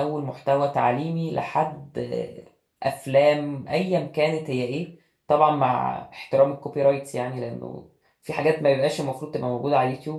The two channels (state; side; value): identical; both; correlation 1.00